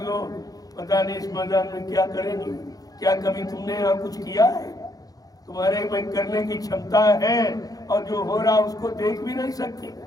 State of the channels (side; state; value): right; late; 0.18 ms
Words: दो। पता नहीं इस मैदान में क्या करेंगे। क्या कभी तुमने यहाँ कुछ किया है? तुम्हारे में करने की क्षमता है और जो हो रहा उसको देख भी नहीं सकते।